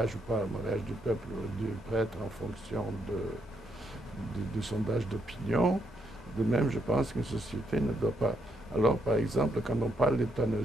ou pas le mariage du peuple ou du prêtre en fonction du sondage d'opinion, de même je pense qu'une société ne doit pas. Alors par exemple, quand on parle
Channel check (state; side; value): normal; both; correlation 0.77